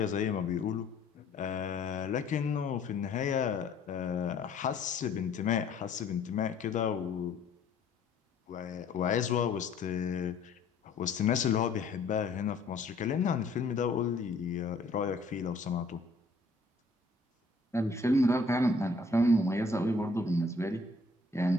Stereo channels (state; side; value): quieter; right; 3.4 dB